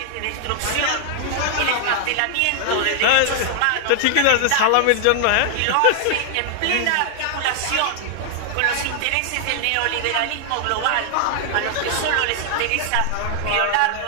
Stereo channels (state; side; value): different; both; correlation 0.00